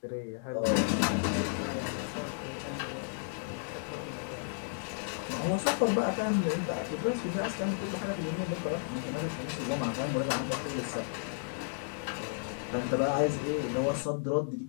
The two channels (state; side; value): silent; right; digital silence